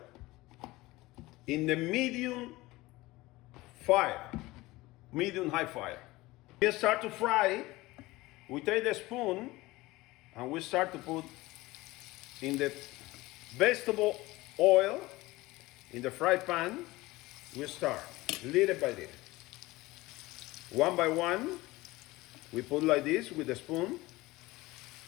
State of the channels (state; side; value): quieter; right; 19.8 dB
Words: in the medium high fire. We start to fry. We take the spoon and we start to put in the vegetable oil in the fry pan. We start little by little, one by one. We put like this with the spoon.